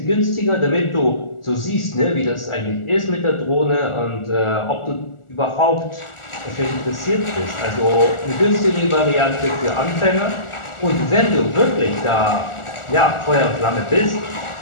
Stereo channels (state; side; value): late; right; 1.4 ms